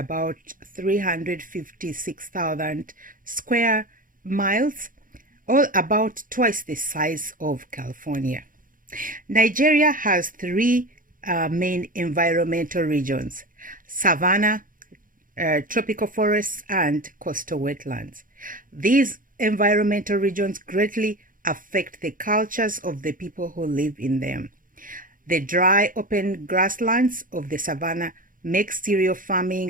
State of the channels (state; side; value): late; left; 0.40 ms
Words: 356,000 square miles, or about twice the size of California. Nigeria has three main environmental regions: Savannah, tropical forests, and coastal wetlands. These environmental regions greatly affect the cultures of the people who live in them. The dry, open grasslands of the savannah make stereo